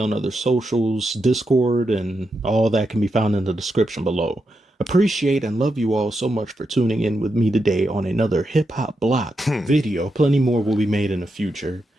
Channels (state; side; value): normal; both; correlation 0.85